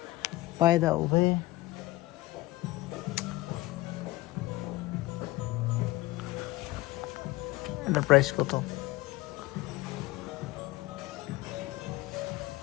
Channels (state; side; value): quieter; right; 19.0 dB